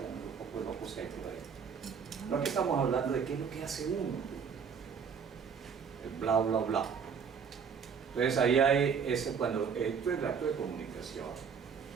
un poco de locos que hay por ahí. No, aquí estamos hablando de qué es lo que hace uno, el bla bla bla. Entonces ahí hay ese, cuando esto es el acto de comunicación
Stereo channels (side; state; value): left; quieter; 6.5 dB